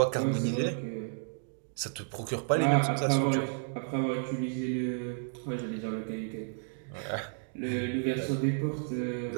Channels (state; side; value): silent; left; digital silence